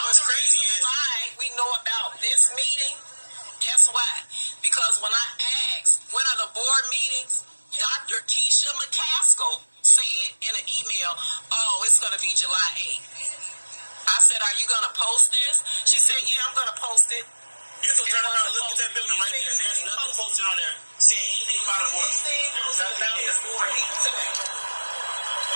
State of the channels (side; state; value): both; inverted; correlation -1.00